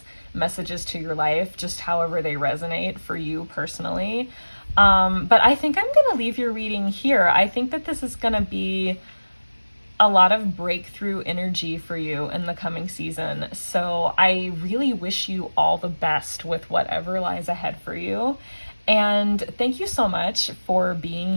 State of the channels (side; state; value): both; inverted; correlation -1.00